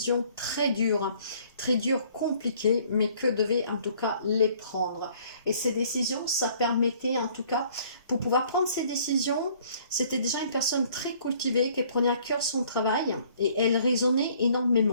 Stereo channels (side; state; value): both; inverted; correlation -0.59